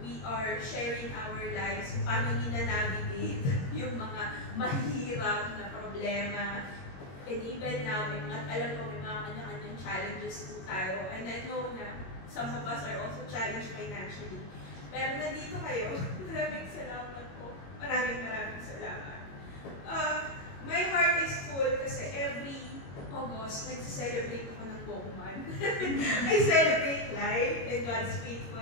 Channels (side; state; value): right; late; 22 ms